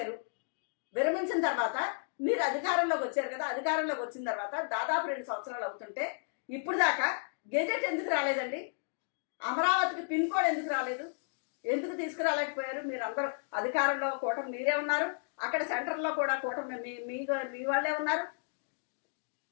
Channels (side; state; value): right; silent; digital silence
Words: విరమించిన తర్వాత మీరు అధికారంలోకి వచ్చారు కదా, అధికారంలోకి వచ్చిన తర్వాత దాదాపు 2 సంవత్సరాలు అవుతుంటే ఇప్పుడు దాకా గెజెట్ ఎందుకు రాలేదండి? అమరావతికి పిన్ కోడ్ ఎందుకు రాలేదు? ఎందుకు తీసుకురాలేకపోయారు? మీరు అందరూ అధికారంలో కూటమి మీరే ఉన్నారు, అక్కడ సెంటర్లో కూడా కూటమి మీ వాళ్ళే ఉన్నారు.